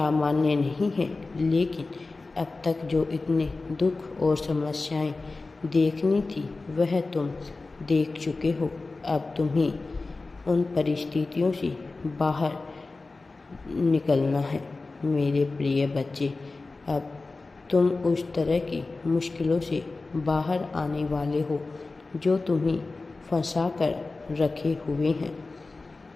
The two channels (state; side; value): quieter; right; 3.6 dB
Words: नहीं है, लेकिन अब तक जो इतने दुख और समस्याएं देखनी थी वह तुम देख चुके हो। अब तुम्हें उन परिस्थितियों से बाहर निकलना है। मेरे प्रिय बच्चे, अब तुम उस तरह की मुश्किलों से बाहर आने वाले हो जो तुम्हें फंसा कर रखे हुए हैं।